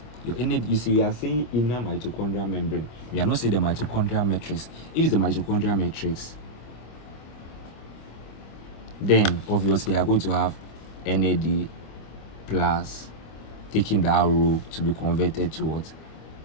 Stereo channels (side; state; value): right; late; 25 ms